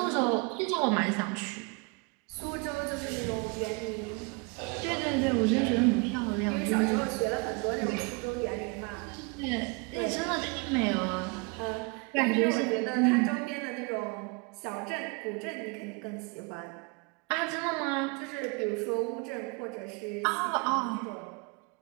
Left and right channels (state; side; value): quieter; left; 30.9 dB